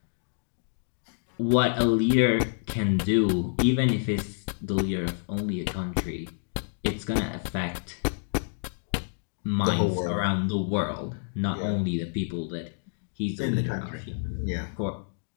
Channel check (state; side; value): silent; right; digital silence